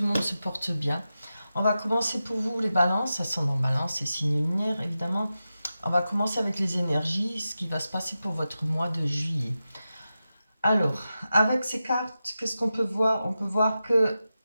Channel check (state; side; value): inverted; both; correlation -0.92